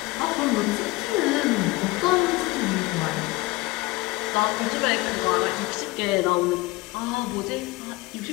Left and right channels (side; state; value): right; quieter; 21.2 dB